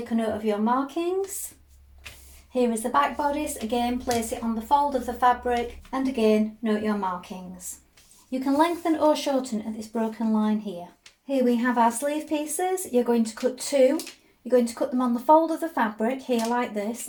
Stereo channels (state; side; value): identical; both; correlation 1.00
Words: a note of your markings. Here is the back bodice. Again, place it on the fold of the fabric, and again, note your markings. You can lengthen or shorten at this broken line here. Here we have our sleeve pieces. You're going to cut two. You're going to cut them on the fold of the fabric here like this.